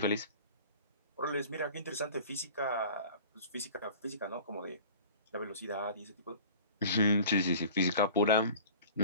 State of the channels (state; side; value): inverted; both; correlation -0.43